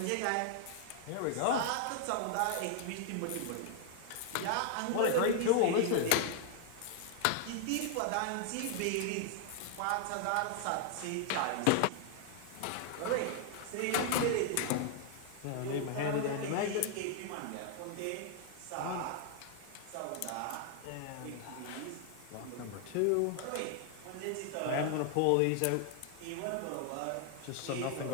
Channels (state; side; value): different; both; correlation 0.00